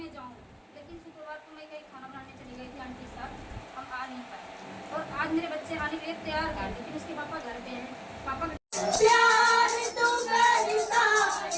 जाऊँ, लेकिन शुक्रवार को मैं कहीं खाना बनाने चली गई थी आंटी साहब, हम आ नहीं पाए। और आज मेरे बच्चे आने के लिए तैयार हैं, लेकिन उसके पापा घर पे हैं। पापा प्यार तो करता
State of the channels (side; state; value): both; identical; correlation 1.00